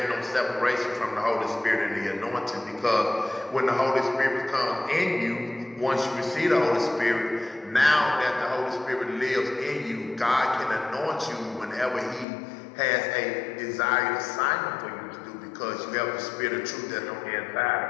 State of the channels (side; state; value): right; drops out; at 12.2 s